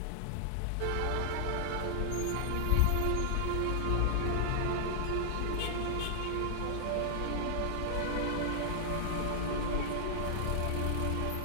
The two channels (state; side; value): different; both; correlation -0.01